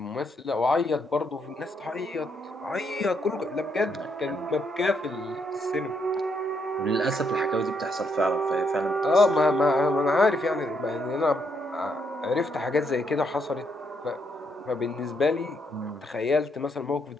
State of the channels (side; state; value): both; normal; correlation 0.75